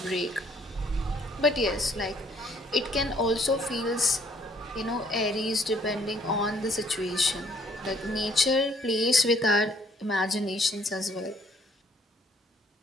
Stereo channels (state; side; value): normal; both; correlation 0.64